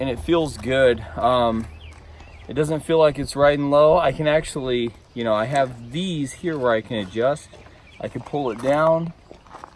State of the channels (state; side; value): identical; both; correlation 1.00